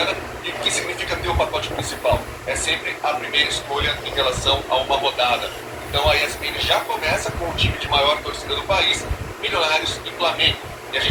E o que significa ter o pacote principal? É sempre a primeira escolha em relação a uma rodada. Então a ESPN já começa com o time de maior torcida do país, Milionários e Flamengo. E a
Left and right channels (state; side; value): identical; both; correlation 1.00